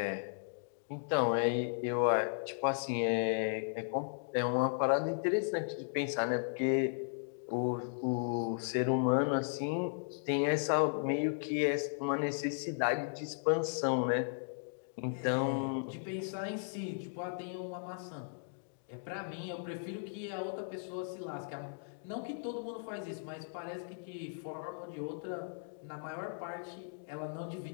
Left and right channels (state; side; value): silent; right; digital silence